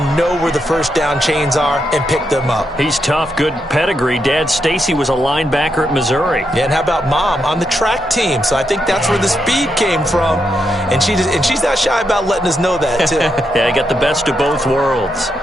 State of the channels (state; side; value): normal; both; correlation 0.82